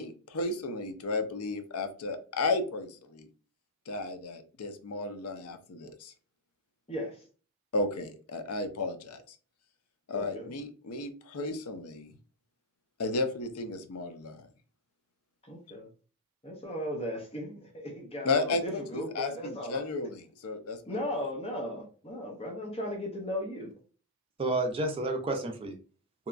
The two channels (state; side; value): normal; both; correlation -0.19